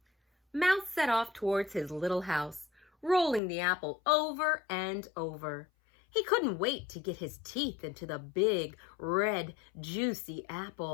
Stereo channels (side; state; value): right; drops out; at 3.4 s